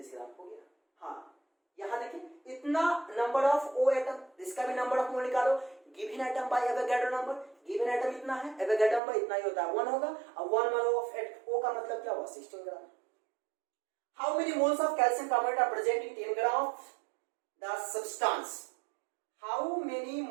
ग्राम हो गया। हाँ यहाँ देखिए इतना नंबर ऑफ O एटम, इसका भी नंबर ऑफ मोल निकालो, given atom by Avogadro number, given atom इतना है, एवोगाड्रो नंबर इतना ही होता है 1 होगा, और 1 मोल ऑफ O का मतलब क्या हुआ 16 ग्राम। How many moles of calcium carbonate are present in 10 gram of the substance? How many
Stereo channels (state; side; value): drops out; left; at 9.0 s